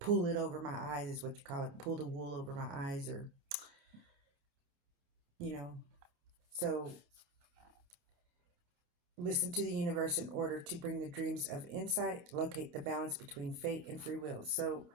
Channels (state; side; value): late; left; 29 ms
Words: it over my eyes, is what you call it. Pull the wool over my eyes, or, you know. So, listen to the universe in order to bring the dreams of insight, locate the balance between fate and free will. So,